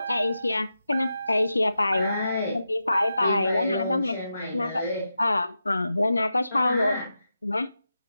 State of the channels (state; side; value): inverted; both; correlation -0.89